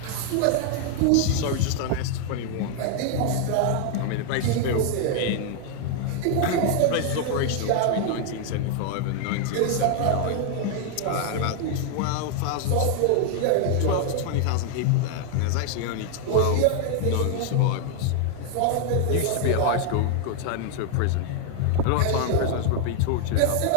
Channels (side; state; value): both; different; correlation 0.00